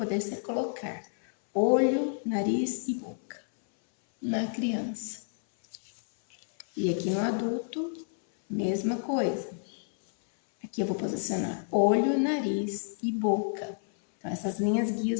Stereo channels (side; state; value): right; silent; 58 dB below the other